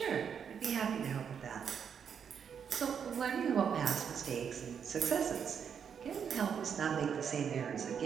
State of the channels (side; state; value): left; quieter; 7.4 dB